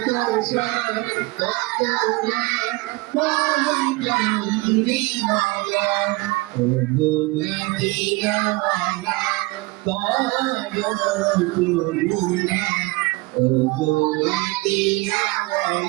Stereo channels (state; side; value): quieter; left; 23.4 dB